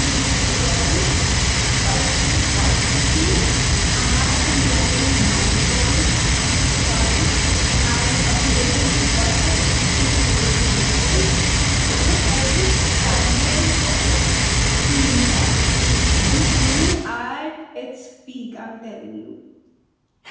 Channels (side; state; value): both; identical; correlation 1.00